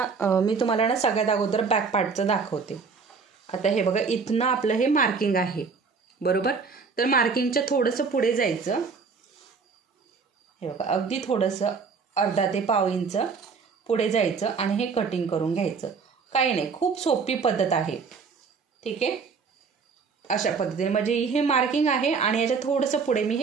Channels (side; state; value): left; quieter; 5.2 dB